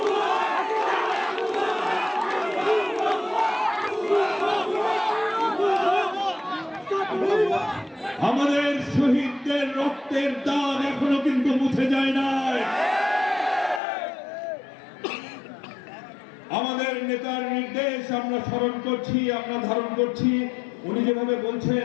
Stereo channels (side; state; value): right; drops out; at 13.8 s